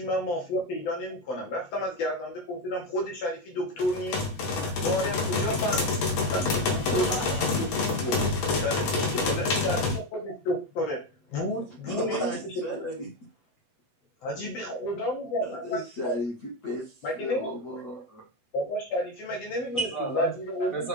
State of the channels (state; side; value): late; right; 8.1 ms